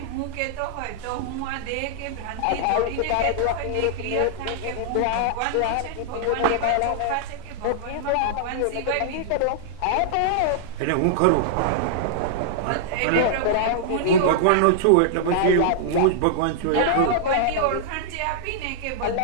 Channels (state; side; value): different; both; correlation -0.01